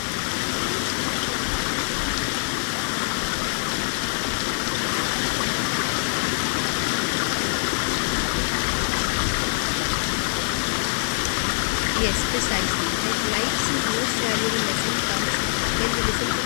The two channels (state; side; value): silent; right; 60 dB below the other